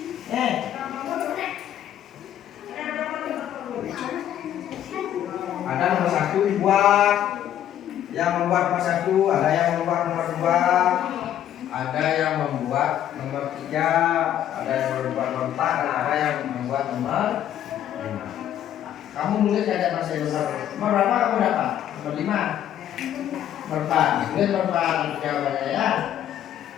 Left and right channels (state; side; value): quieter; right; 11.0 dB